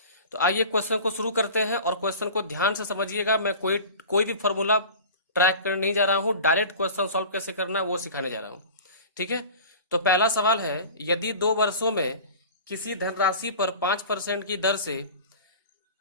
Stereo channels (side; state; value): both; inverted; correlation -0.38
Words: तो आइए क्वेश्चन को शुरू करते हैं और क्वेश्चन को ध्यान से समझिएगा। मैं कोई भी फॉर्मूला ट्रैक करने नहीं जा रहा हूं, डायरेक्ट क्वेश्चन सॉल्व कैसे करना है वो सिखाने जा रहा हूं। ठीक है, तो पहला सवाल है, यदि 2 वर्षों में किसी धनराशि पर 5% की दर से